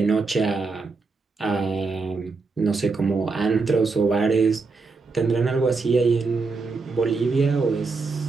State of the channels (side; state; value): left; quieter; 4.2 dB